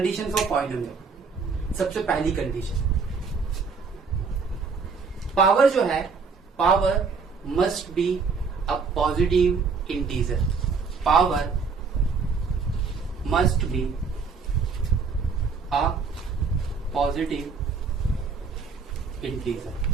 for polynomial. सबसे पहली कंडीशन, पावर जो है, power must be a positive integer, power must be a positive integer.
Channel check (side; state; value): left; quieter; 5.0 dB